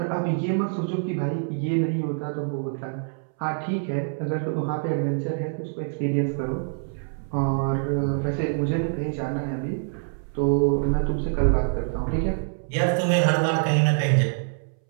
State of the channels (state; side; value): silent; left; 61 dB below the other